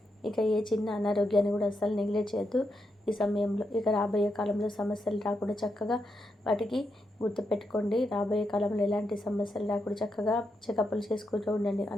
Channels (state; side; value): normal; both; correlation 0.84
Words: ఇక ఏ చిన్న అనారోగ్యాన్ని కూడా అస్సలు నెగ్లెక్ట్ చేయొద్దు ఈ సమయంలో. ఇక రాబోయే కాలంలో సమస్యలు రాకుండా చక్కగా వాటికి గుర్తుపెట్టుకోండి. రాబోయే కాలంలో ఎలాంటి సమస్యలు రాకుండా చక్కగా చెకప్లు చేసుకుంటూ ఉండండి.